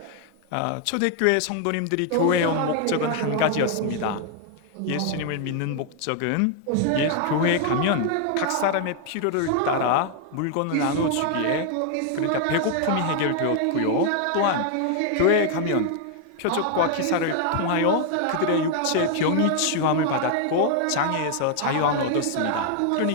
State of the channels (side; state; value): both; different; correlation 0.00